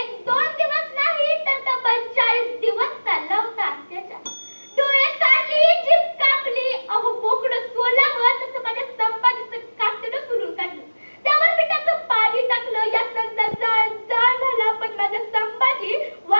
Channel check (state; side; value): inverted; both; correlation -1.00